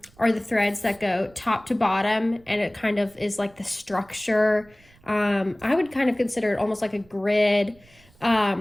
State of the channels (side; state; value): right; noise; rumble, 28 dB below the sound